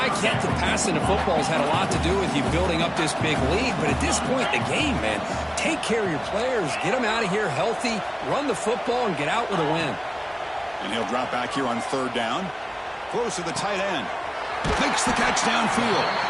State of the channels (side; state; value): both; identical; correlation 1.00